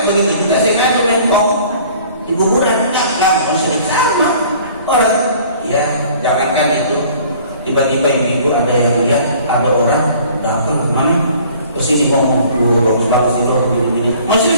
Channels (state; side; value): inverted; both; correlation -0.52